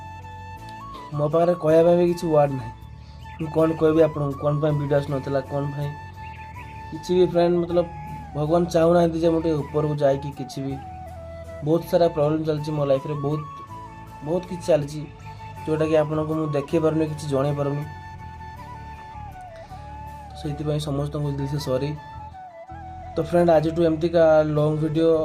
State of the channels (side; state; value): both; identical; correlation 1.00